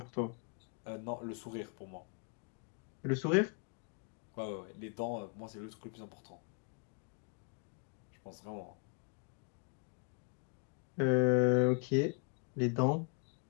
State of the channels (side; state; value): right; quieter; 38.2 dB